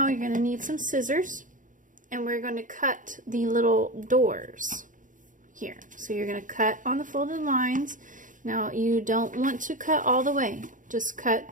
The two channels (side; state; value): left; late; 0.38 ms